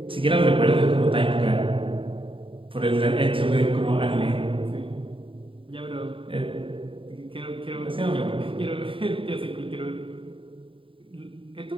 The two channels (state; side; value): late; left; 0.25 ms